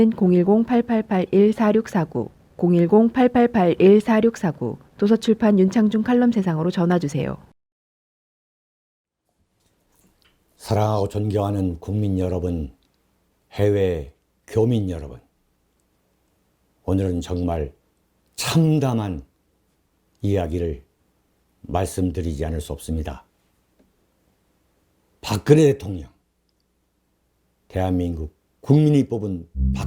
010-8881-4649 010-8881-4649 도서출판 윤창중 칼럼 세상으로 전화주세요. 사랑하고 존경하는 국민 여러분, 해외 교민 여러분, 오늘은 정말 참담한 이야기를 말씀드리지 않을 수 없습니다. 박근혜 대통령, 대한민국 국민이 뽑은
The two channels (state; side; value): identical; both; correlation 1.00